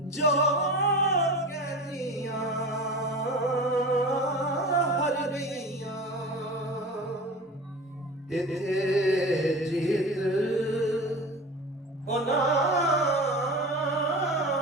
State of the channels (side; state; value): both; normal; correlation 0.33